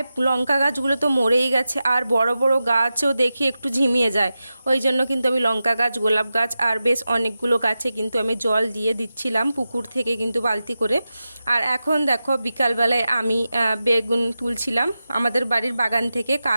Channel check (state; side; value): inverted; both; correlation -0.92